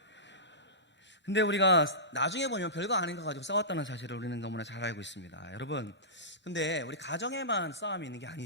근데 우리가 나중에 보면 별거 아닌 거 가지고 싸웠다는 사실을 우리는 너무나 잘 알고 있습니다. 여러분, 근데 우리 가정에만 싸움이 있는 게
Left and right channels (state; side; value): normal; both; correlation -0.20